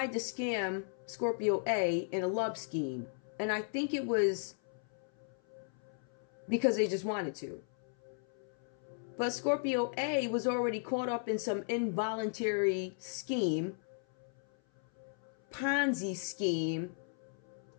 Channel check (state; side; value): silent; right; 54 dB below the other